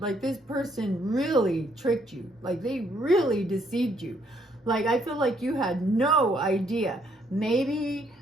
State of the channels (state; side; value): normal; both; correlation 0.70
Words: Like, this person really tricked you. Like, they really deceived you. Like, I feel like you had no idea. Maybe,